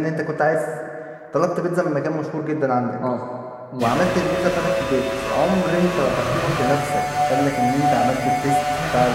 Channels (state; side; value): identical; both; correlation 1.00